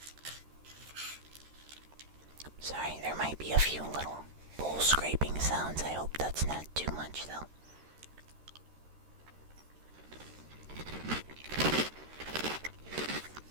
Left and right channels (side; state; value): left; late; 13 ms